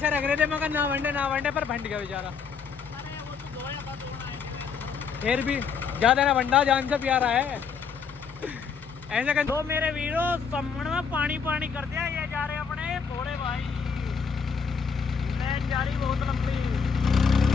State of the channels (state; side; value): quieter; right; 6.1 dB